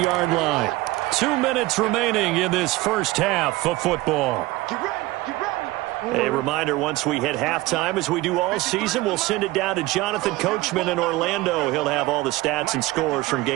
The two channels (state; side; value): quieter; left; 19.3 dB